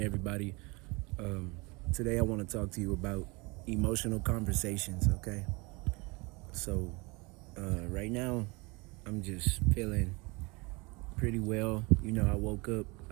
Today, I want to talk to you about emotional conversations, okay? So, right now, I'm just feeling pretty well. I woke up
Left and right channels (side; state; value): left; quieter; 26.8 dB